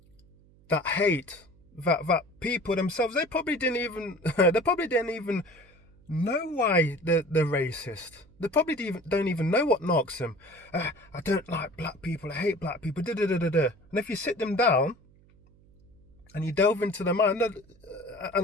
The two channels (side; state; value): right; noise; hum, 28 dB below the sound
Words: That hate, that people themselves, they probably didn't even know why they're racist. They probably don't even know what knocks them. I don't like black people. I hate black people. Da, da, da, da, da. And if you sit them down and you delve into their mind